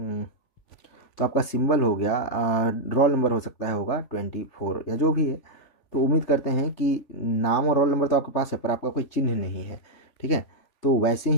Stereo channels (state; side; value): late; right; 3.5 ms